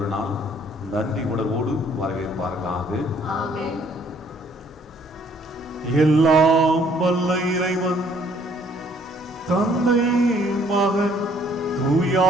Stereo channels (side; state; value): both; normal; correlation 0.62